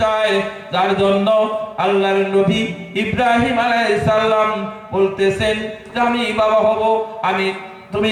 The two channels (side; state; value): both; identical; correlation 1.00